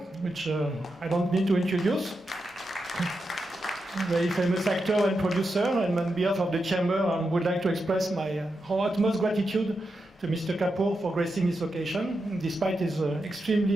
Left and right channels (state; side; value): normal; both; correlation 0.87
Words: which I don't need to introduce. Very famous actor and producer, and on behalf of the Chamber, I would like to express my utmost gratitude to Mr. Kapoor for gracing this occasion, despite his